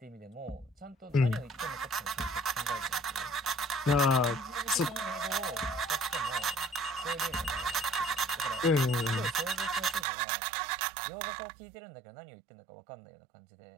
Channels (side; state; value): left; drops out; at 10.1 s